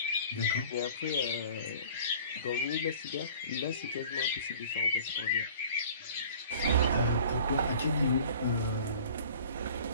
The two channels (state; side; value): inverted; both; correlation -0.47